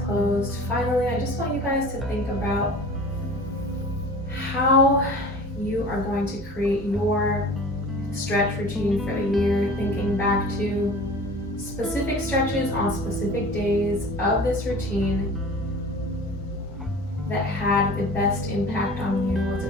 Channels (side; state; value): both; normal; correlation 0.41